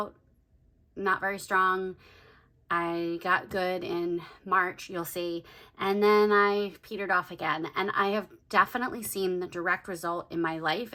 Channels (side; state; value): both; identical; correlation 1.00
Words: not very strong. I got good in March, you'll see, and then I petered off again. And I have definitely seen the direct result in my life